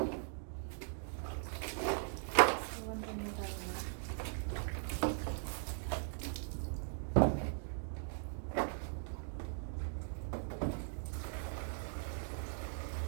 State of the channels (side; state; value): left; silent; digital silence